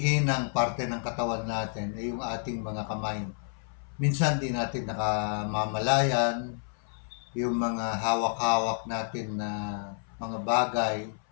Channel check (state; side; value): silent; right; 58 dB below the other